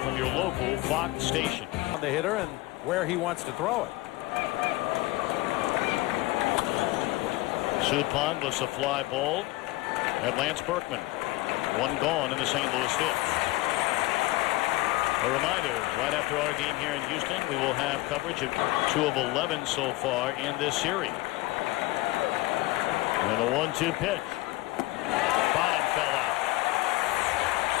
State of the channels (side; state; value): right; quieter; 19.5 dB